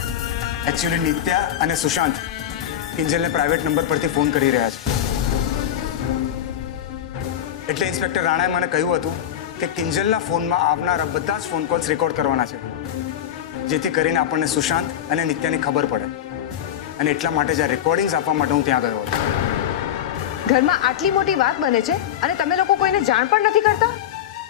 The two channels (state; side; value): quieter; right; 10.5 dB